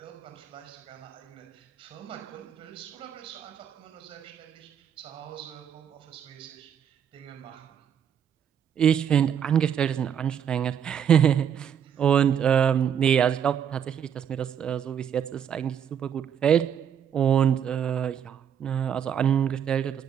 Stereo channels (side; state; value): left; quieter; 8.6 dB